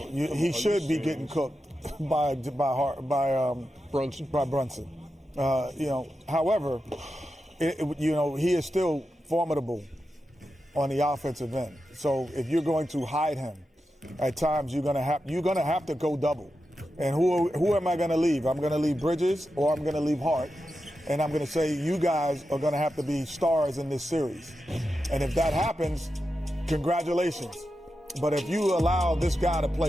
he should be getting cooked by Brunson. By Brunson. However, he is still formidable on the offensive end. So if you're going to hide him, at times you're gonna have to go double. And who am I going to leave? I'm going to leave Bridges or I'm going to leave Hart. And I'm going to say you guys are going to have to be stars in this series. And if that happens, congratulations. But if you allow this guy to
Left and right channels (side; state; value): both; normal; correlation 0.89